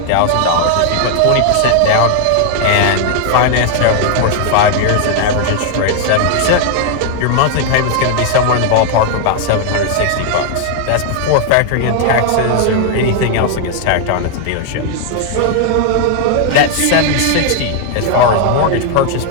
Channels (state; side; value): different; both; correlation 0.00